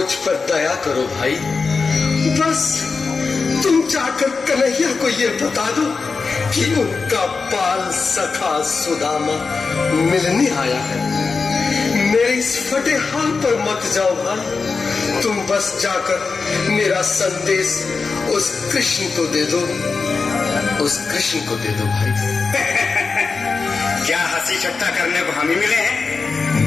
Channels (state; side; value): quieter; right; 4.6 dB